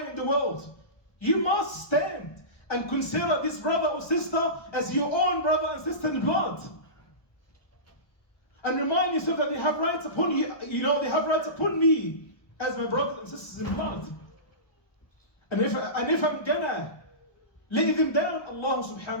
in the world, you must stand and consider this brother or sister as your own brother and sister in blood. And remind yourself that they have rights upon you, they have rights upon me as my brothers and sisters in blood. And if I'm gonna lay them down, Allah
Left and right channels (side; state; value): right; late; 1.2 ms